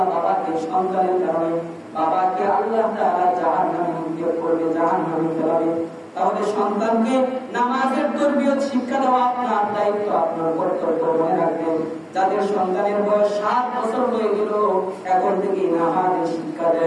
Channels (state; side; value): identical; both; correlation 1.00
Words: বাবাকে সন্তানের কারণে বাবাকে আল্লাহ তাআলা জাহান্নামে নিক্ষেপ করবে, জাহান্নামে ফেলাবে। তাহলে সন্তানকে নামাজের তরবিয়ত শিক্ষা দেওয়া আপনার দায়িত্ব, আপনার কর্তব্য মনে রাখবেন। যাদের সন্তানের বয়স 7 বছর হয়ে গেল, এখন থেকে নামাজের শিক্ষা